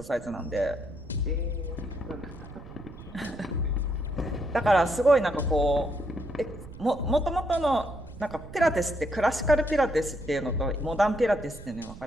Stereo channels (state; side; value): noise; right; rumble, 15 dB below the sound